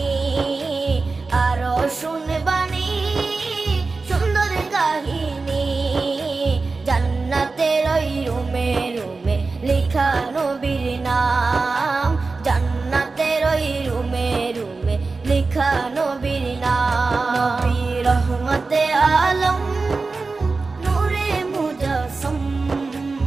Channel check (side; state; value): left; quieter; 4.0 dB